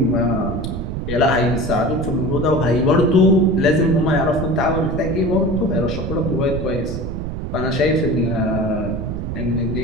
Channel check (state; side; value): noise; right; rumble, 5 dB below the sound